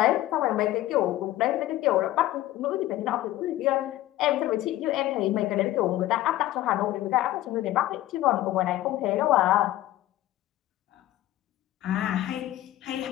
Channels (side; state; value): right; quieter; 15.1 dB